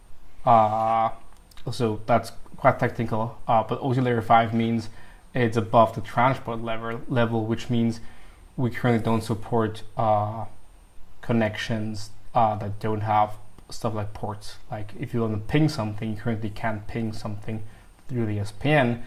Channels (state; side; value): identical; both; correlation 1.00